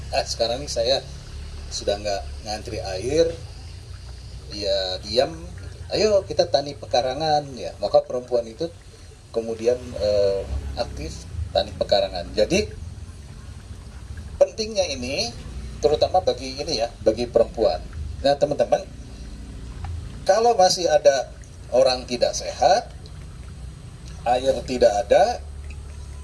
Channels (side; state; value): both; identical; correlation 1.00